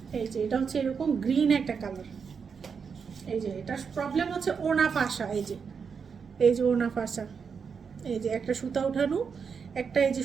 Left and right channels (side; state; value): left; quieter; 6.1 dB